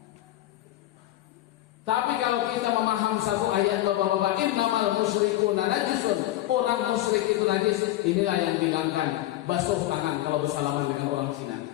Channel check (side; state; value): right; quieter; 15.1 dB